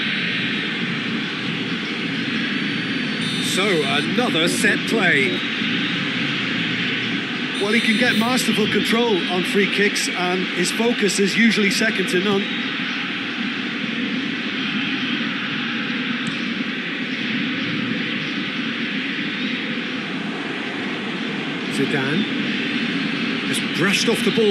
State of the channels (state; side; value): identical; both; correlation 1.00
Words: So, another set play. Well, he can get masterful control on free kicks, and his focus is usually second to none. Zidane. Just brushed off the